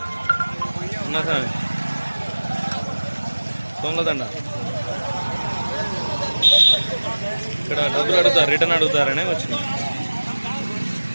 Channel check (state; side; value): inverted; both; correlation -1.00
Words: ఉన్నా సామి సోమలదండ ఇక్కడ డబ్బులు అడుగుతారు, రిటర్న్ అడుగుతారనే వచ్చింది.